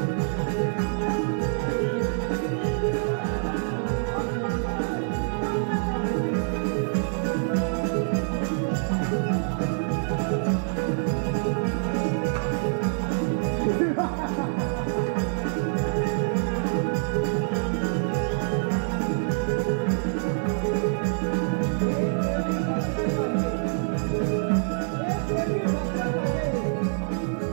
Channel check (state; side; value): silent; left; 61 dB below the other